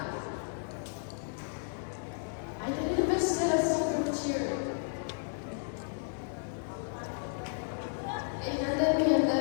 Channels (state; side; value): silent; right; digital silence